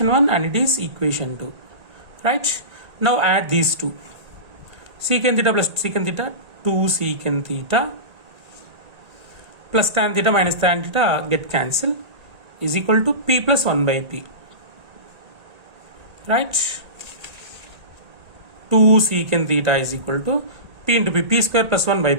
1 and it is equation 2. Right? Now add these two. Secant theta plus secant theta, 2 secant theta plus tan theta minus tan theta get cancelled is equal to P plus 1 by P. Right? 2 secant theta is equal to P into P. P square plus 1 by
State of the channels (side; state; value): left; late; 1.9 ms